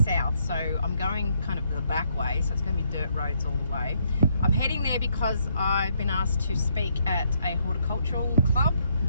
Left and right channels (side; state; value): both; inverted; correlation -0.72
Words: So I'm going kind of the back way, so it's going to be dirt roads all the way. I'm heading there because I've been asked to speak at a horticultural club,